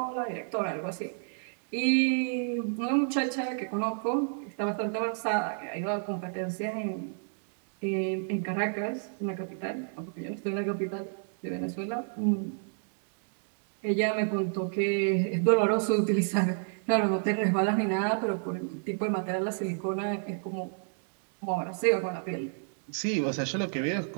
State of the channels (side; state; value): left; silent; digital silence